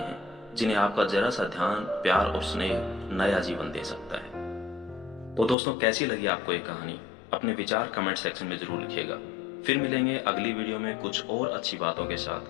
जिन्हें आपका जरा सा ध्यान, प्यार और स्नेह नया जीवन दे सकता है। तो दोस्तों, कैसी लगी आपको ये कहानी? अपने विचार कमेंट सेक्शन में जरूर लिखिएगा। फिर मिलेंगे अगली वीडियो में कुछ और अच्छी बातों के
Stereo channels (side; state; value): right; drops out; at 5.6 s